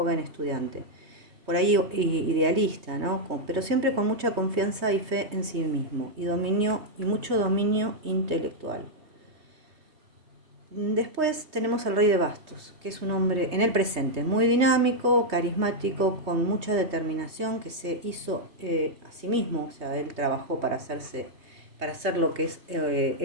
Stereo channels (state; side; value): late; left; 3.2 ms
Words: estudiante. Por ahí idealista, ¿no? Pero siempre con mucha confianza y fe en sí mismo y mucho dominio intelectual. Después tenemos al rey de bastos, que es un hombre en el presente, muy dinámico, carismático, con mucha determinación, que se hizo a sí mismo, o sea, él trabajó para hacer lo que es